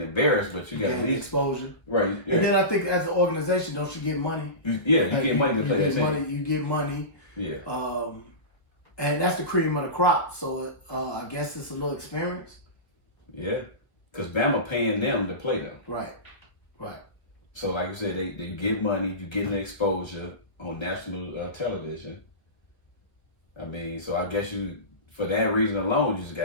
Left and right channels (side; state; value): right; late; 1.5 ms